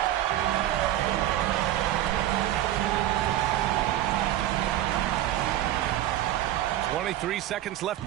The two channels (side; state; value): left; quieter; 13.2 dB